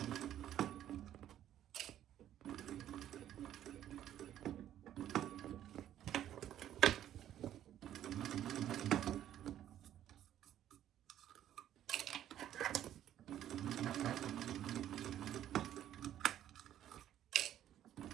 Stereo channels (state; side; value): quieter; left; 11.5 dB